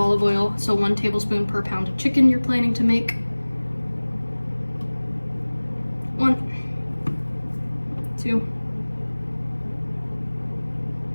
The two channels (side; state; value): both; inverted; correlation -1.00